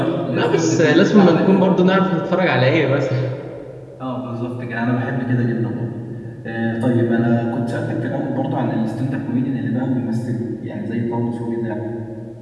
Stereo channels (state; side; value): identical; both; correlation 1.00